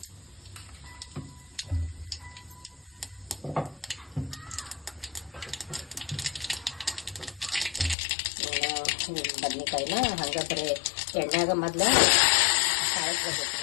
ಬದ್ನಿಕಾಯಿನ ಹಂಗ ಬರೀ ಎಣ್ಣೆಗ ಮೊದ್ಲ ಸಾಯಿಸ್ಬೇಕು.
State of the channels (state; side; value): drops out; right; at 8.0 s